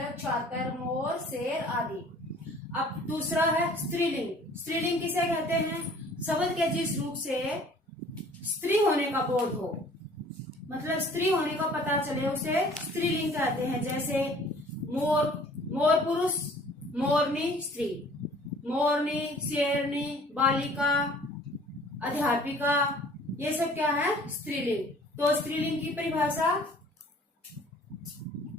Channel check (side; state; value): both; normal; correlation 0.52